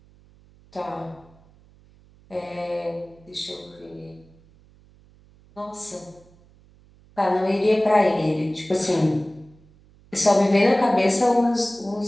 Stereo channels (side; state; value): right; noise; hum, 28 dB below the sound